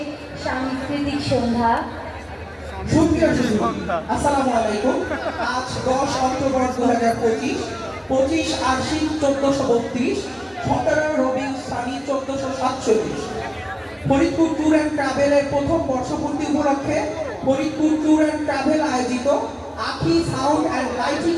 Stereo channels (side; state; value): both; identical; correlation 1.00